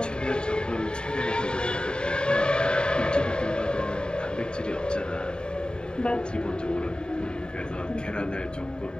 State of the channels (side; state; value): right; late; 0.048 ms